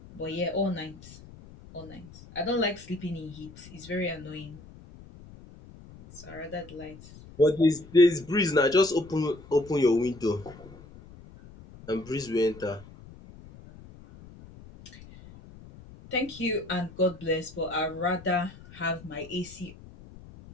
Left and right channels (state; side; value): noise; left; rumble, 19 dB below the sound